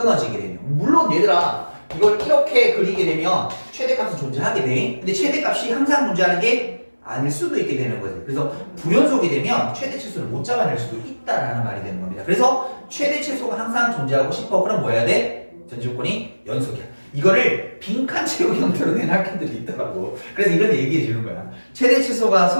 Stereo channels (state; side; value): inverted; both; correlation -1.00